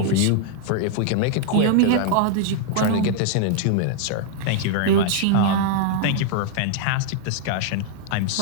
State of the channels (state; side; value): different; both; correlation -0.01